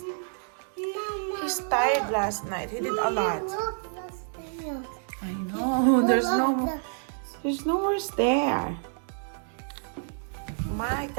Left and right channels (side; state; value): left; silent; digital silence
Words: he's tired last night. He did a lot. Look the stairs. I know. There's no more stair. My